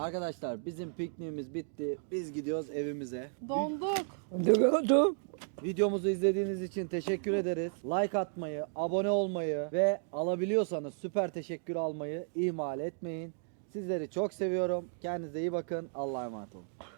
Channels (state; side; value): silent; left; digital silence